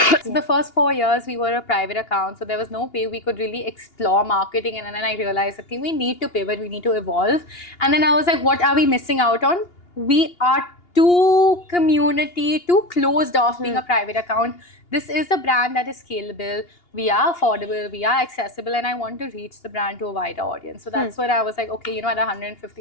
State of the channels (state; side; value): late; right; 2.8 ms